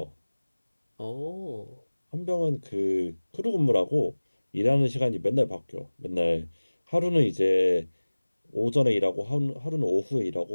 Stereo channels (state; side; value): inverted; both; correlation -1.00